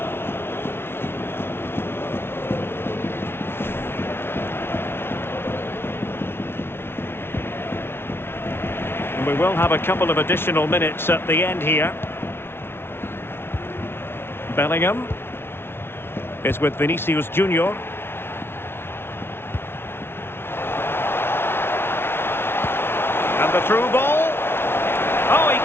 And we will have a couple of additional minutes at the end here. Bellingham is with Vinicius Junior. And the through ball. Oh, he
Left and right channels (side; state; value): right; late; 0.11 ms